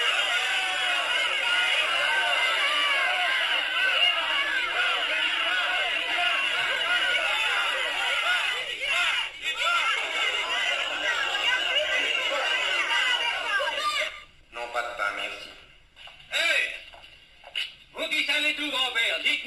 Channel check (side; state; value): both; identical; correlation 1.00